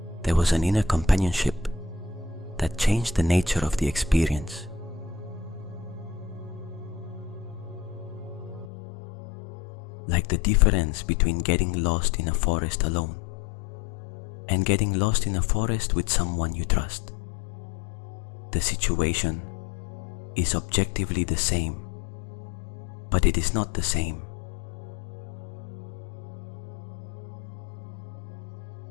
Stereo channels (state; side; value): drops out; right; at 8.7 s